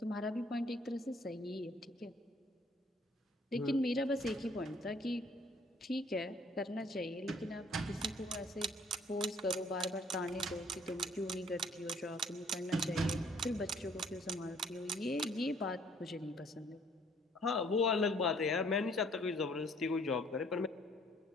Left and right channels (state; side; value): normal; both; correlation 0.60